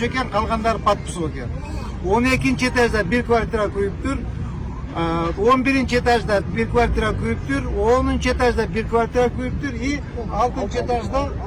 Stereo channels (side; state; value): both; identical; correlation 1.00